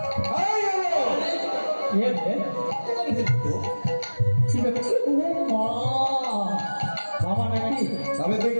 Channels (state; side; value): inverted; both; correlation -1.00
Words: এই নারদ, কে রে? কি ব্যাপার? ও মা, মামা নাকি? তবে তুই